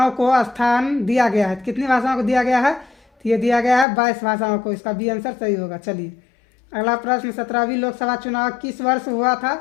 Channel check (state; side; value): drops out; right; at 3.9 s